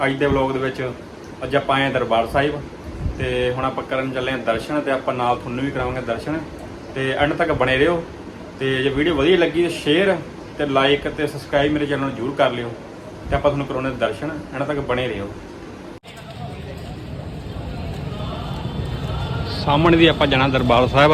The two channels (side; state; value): both; identical; correlation 1.00